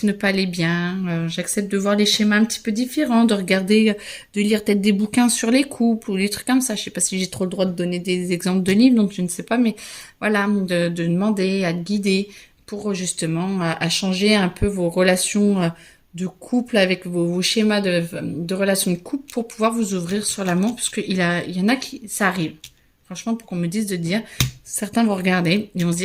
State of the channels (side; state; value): both; identical; correlation 1.00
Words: ne pas aller bien, j'accepte de voir les schémas un petit peu différents, de regarder, de lire peut-être des bouquins sur les couples ou des trucs comme ça. Je sais pas si j'ai trop le droit de donner des exemples de livres, donc je ne sais pas, mais voilà, de demander à te guider pour justement à changer un peu vos relations de couple avec vos schémas de relations de couple pour pouvoir vous ouvrir sur l'amour, parce qu'il y en a qui, ça arrive. Franchement, pour qu'on me dise de dire, certains vont regarder et vont se